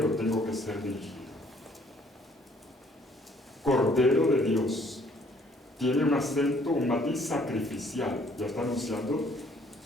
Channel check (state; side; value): normal; both; correlation 0.62